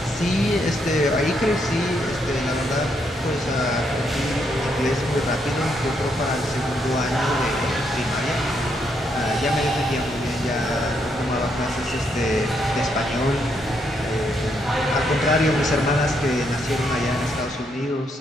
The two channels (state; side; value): normal; both; correlation 0.76